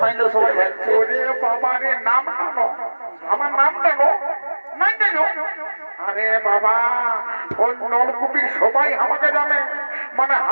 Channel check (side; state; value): both; inverted; correlation -1.00